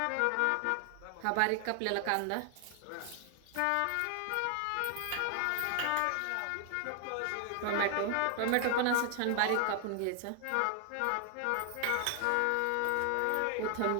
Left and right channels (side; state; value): both; different; correlation 0.00